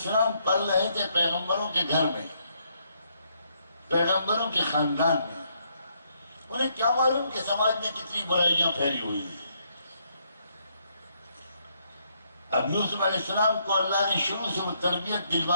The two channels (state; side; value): inverted; both; correlation -0.74